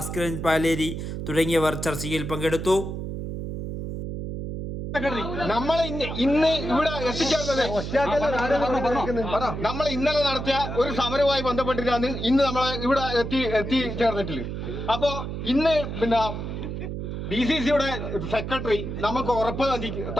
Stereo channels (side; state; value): right; noise; hum, 5 dB below the sound